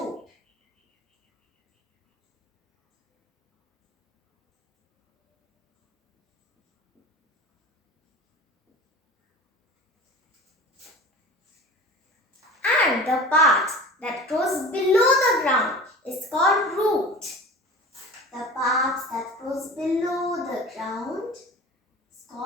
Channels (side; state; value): both; normal; correlation 0.37